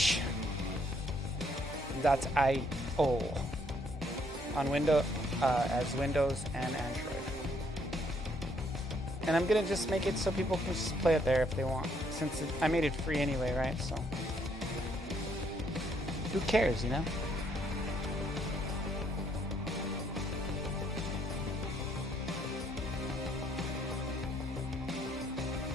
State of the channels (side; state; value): both; normal; correlation 0.69